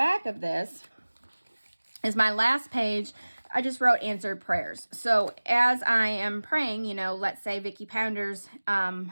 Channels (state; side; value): inverted; both; correlation -1.00